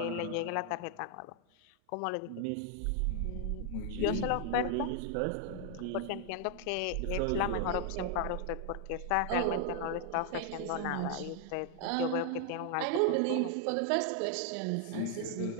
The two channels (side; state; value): both; different; correlation 0.00